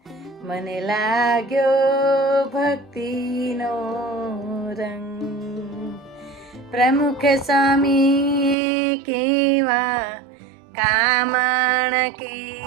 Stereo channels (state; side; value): drops out; left; at 8.6 s